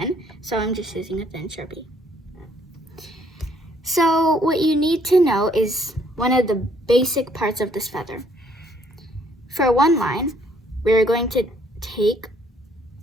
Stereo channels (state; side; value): normal; both; correlation 0.65